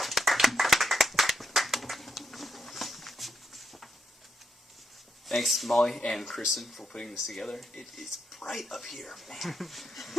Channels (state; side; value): normal; both; correlation 0.81